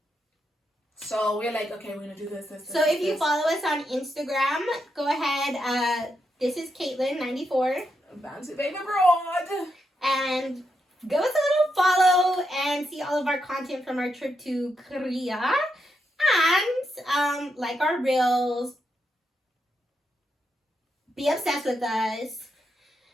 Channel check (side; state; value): both; normal; correlation 0.83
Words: So we're like, okay, we're going to do this. So if you follow us on Instagram, go ahead. This is Caitlin94. Bouncy Baby Broad. And give us a little follow and see all of our content from our trip to Korea. And like our reels. Be obsessed with us.